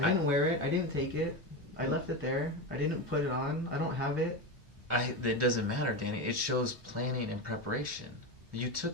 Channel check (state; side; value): normal; both; correlation 0.18